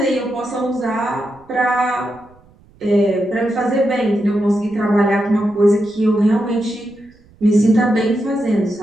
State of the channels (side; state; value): right; noise; rumble, 29 dB below the sound